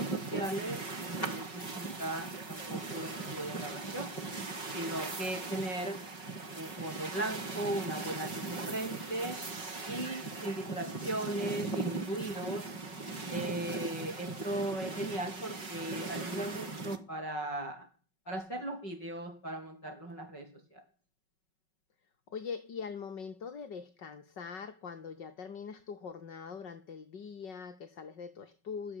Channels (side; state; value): right; late; 5.4 ms